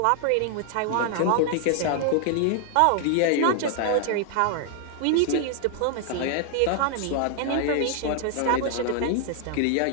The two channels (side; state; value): both; different; correlation 0.00